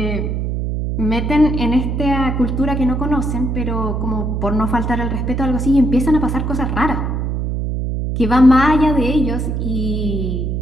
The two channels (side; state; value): right; noise; hum, 1 dB below the sound